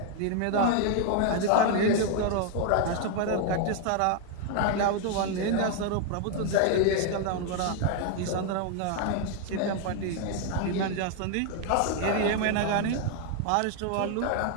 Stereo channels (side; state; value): both; different; correlation 0.00